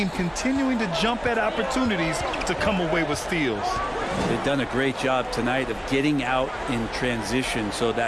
continuing to jump at opportunities to come away with steals. They've done a great job tonight of getting out in transition, so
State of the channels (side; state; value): both; identical; correlation 1.00